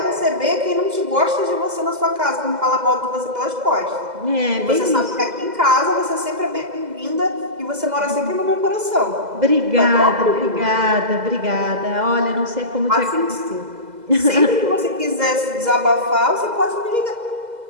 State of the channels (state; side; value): late; left; 2.0 ms